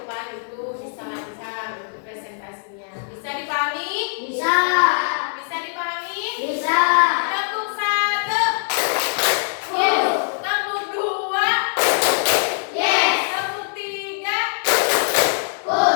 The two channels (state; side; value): silent; right; digital silence